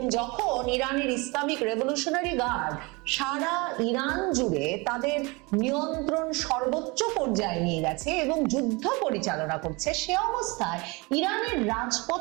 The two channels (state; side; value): quieter; left; 26.2 dB